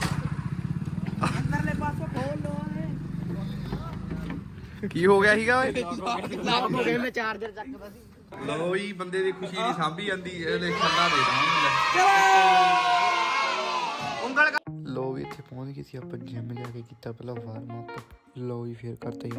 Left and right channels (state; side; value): identical; both; correlation 1.00